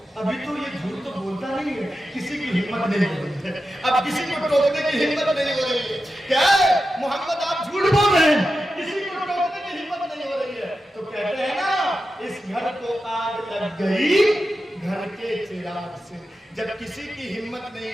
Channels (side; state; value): both; normal; correlation 0.91